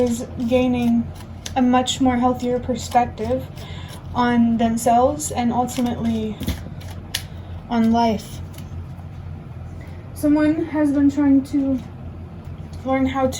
gaining a much more healthier perspective on themselves and ultimately on life. Someone has been trying to learn how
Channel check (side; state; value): both; identical; correlation 1.00